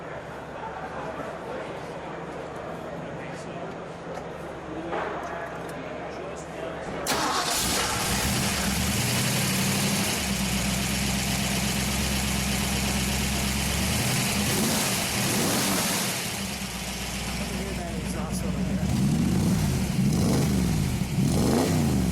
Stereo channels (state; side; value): identical; both; correlation 1.00